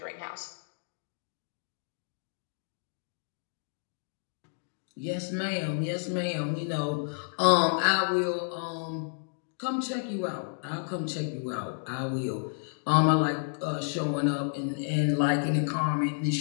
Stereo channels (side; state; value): right; silent; digital silence